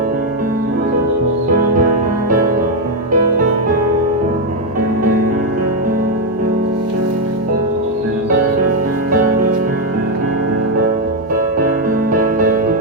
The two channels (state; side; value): normal; both; correlation 0.03